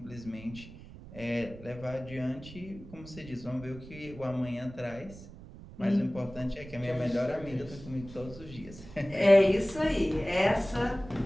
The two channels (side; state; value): right; noise; rumble, 16 dB below the sound